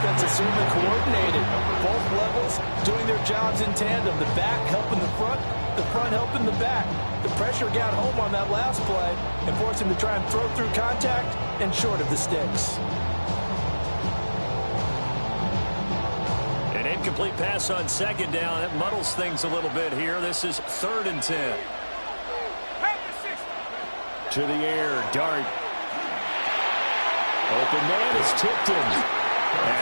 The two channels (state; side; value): inverted; both; correlation -1.00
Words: is certainly coordinated. Both levels doing their jobs in tandem. The back helping the front helping the back. The pressure got home on that last play and forced him to try and throw through contact and short of the sticks. Incomplete pass on second down. That muddles things a little bit here. This is 3rd and 10. To the air, Dart. Open man is tipped in.